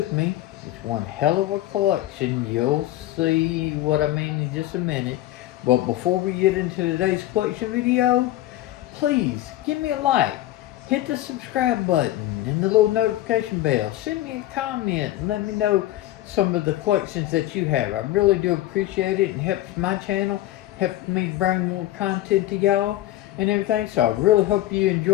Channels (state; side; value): quieter; right; 14.9 dB